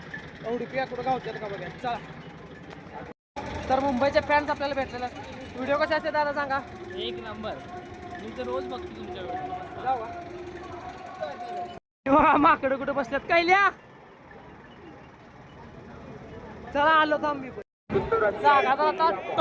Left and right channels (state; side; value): identical; both; correlation 1.00